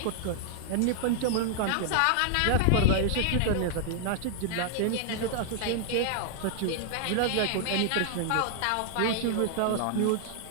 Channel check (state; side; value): different; both; correlation 0.00